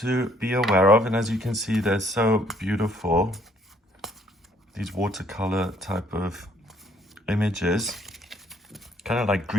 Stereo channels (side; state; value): both; normal; correlation 0.64